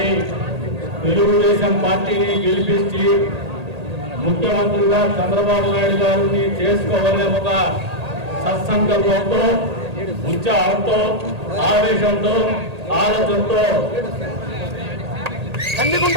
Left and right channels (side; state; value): left; late; 1.8 ms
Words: తెలుగుదేశం పార్టీని గెలిపించి ముఖ్యమంత్రిగా చంద్రబాబు నాయుడు గారిని చేసుకోవాలనే ఒక సత్సంకల్పంతో, ఉత్సాహంతో, ఆవేశంతో, ఆలోచనతో